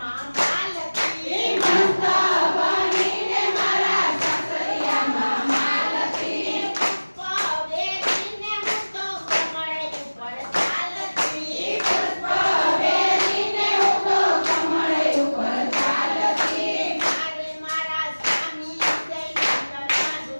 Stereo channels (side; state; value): both; inverted; correlation -1.00